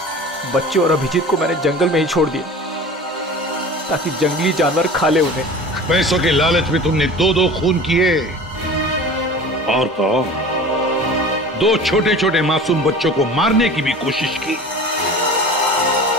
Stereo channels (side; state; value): both; normal; correlation 0.39